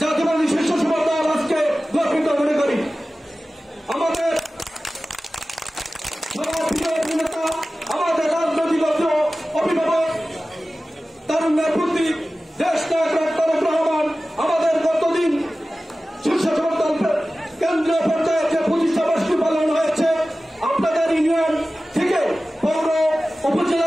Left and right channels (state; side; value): normal; both; correlation 0.96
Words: জাতীয়বাদী স্বেচ্ছাসেবক দল আজকে গর্বিত মনে করি। আমাদের নেতা, আমাদের রাজনৈতিক অভিভাবক, তারুণ্যের প্রতি দেশ নায়ক তারেক রহমান আমাদের গতদিন স্বেচ্ছাসেবক দল কেন্দ্রীয় পর্যায়ে যে 25 বার্ষিকী পালন হয়েছে, আপনাদের ইউনিয়ন থেকে পৌর